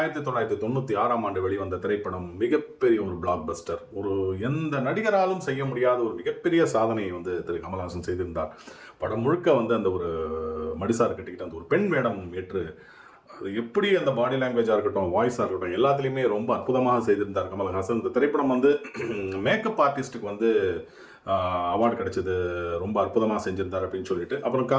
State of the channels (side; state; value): both; identical; correlation 1.00